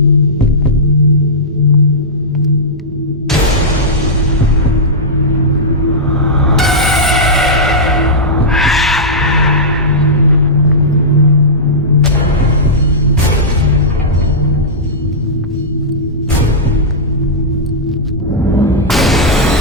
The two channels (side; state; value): both; normal; correlation -0.12